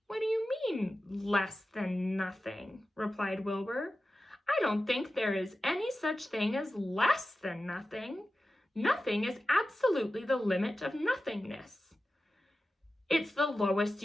"What do you mean, less than nothing?" replied Wilbur. "I don't think there is any such thing as less than nothing. Nothing is absolutely the limit of nothingness. It's the lowest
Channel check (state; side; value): normal; both; correlation 0.94